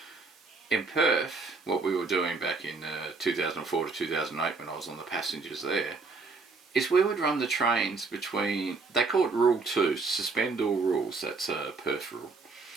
In Perth, what we were doing back in 2004 to 2008 when I was on the passengers there, is we would run the trains between, they call it Rule 2, suspend all rules, that's a Perth rule.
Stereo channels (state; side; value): quieter; left; 4.1 dB